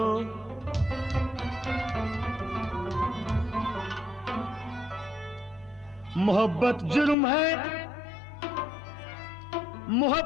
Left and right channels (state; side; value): drops out; right; at 7.2 s